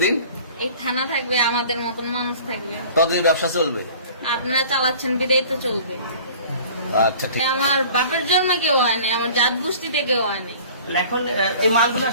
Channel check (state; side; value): inverted; both; correlation -0.46